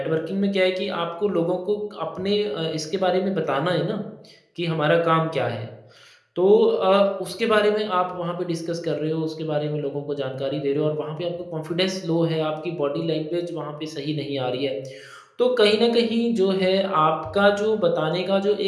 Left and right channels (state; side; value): identical; both; correlation 1.00